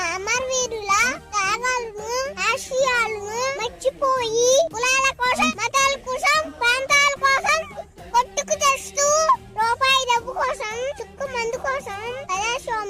అమరవీరుల త్యాగాలను ఆశయాలను మర్చిపోయి కులాల కోసం మతాల కోసం ప్రాంతాల కోసం కొట్టుకు తెస్తూ రూపాయి డబ్బు కోసం చుక్కు మందు కోసం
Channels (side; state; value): both; identical; correlation 1.00